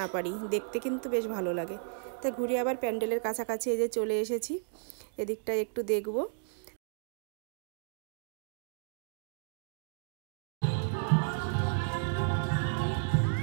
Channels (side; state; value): left; silent; digital silence